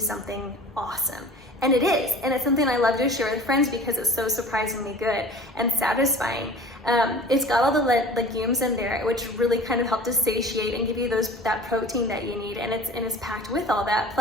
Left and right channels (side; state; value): both; normal; correlation 0.42